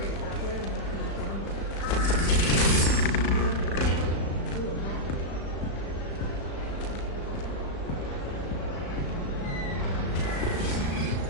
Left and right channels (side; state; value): right; late; 36 ms